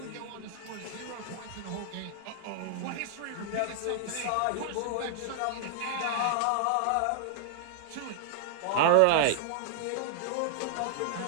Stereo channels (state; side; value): different; both; correlation -0.01